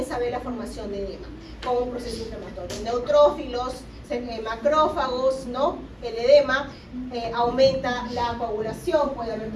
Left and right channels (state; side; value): identical; both; correlation 1.00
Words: a ver la formación de edema como un proceso inflamatorio. Neutrófilos, macrófagos, ¿no? El edema aumenta la coagulación, puede haber